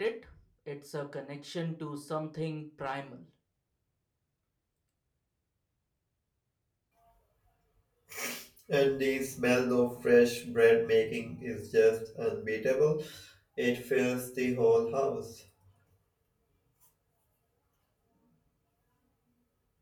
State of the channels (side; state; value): both; identical; correlation 1.00